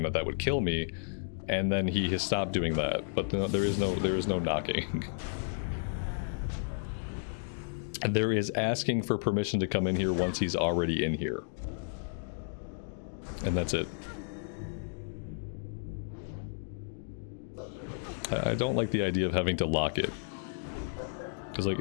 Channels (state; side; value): silent; right; digital silence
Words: that would kill me. And then he has stopped doing that, but there is no knocking. There is asking for permission to come in here once he's already in here. And that's it. I don't like the idea of having to lock it. Because, like,